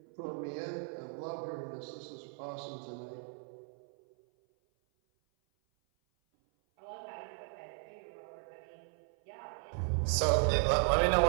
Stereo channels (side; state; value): left; silent; 54 dB below the other